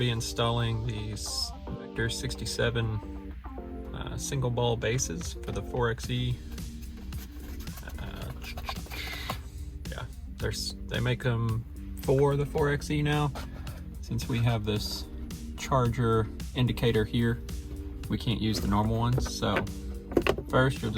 installing these Vector 67 single ball bases for the 4xe. Yeah, they make them for the 4xe now. Since we have this charger indicator here, we can't use the normal ones. So first you'll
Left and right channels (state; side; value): identical; both; correlation 1.00